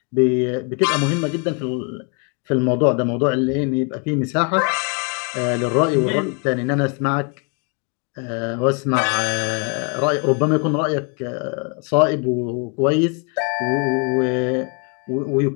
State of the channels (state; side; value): quieter; right; 35.9 dB